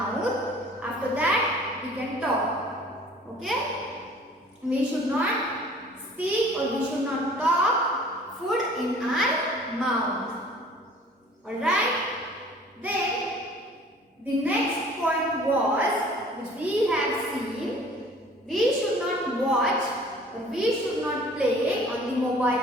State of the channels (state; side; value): normal; both; correlation 0.50